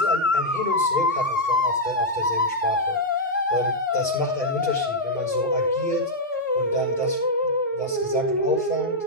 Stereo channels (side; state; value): both; normal; correlation -0.05